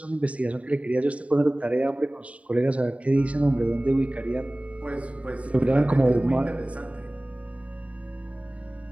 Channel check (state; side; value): late; left; 0.066 ms